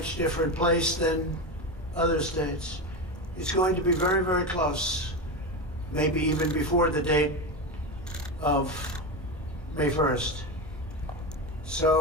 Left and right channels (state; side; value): normal; both; correlation 0.18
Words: different place than other states. It's going to be very, very close, maybe even before the date of May 1st.